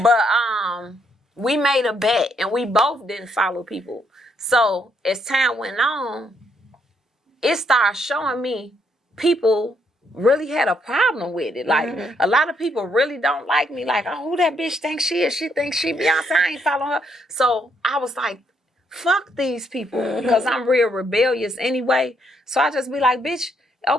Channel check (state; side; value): normal; both; correlation 0.73